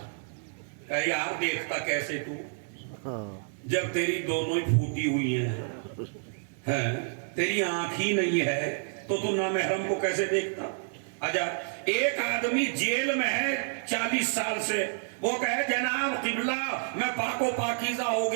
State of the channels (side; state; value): left; silent; digital silence